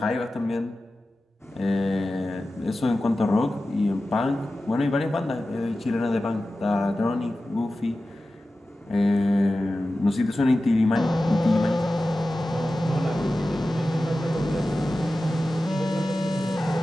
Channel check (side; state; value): both; normal; correlation 0.94